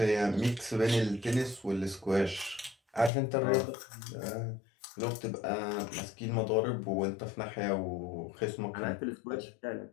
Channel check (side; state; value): right; drops out; at 3.1 s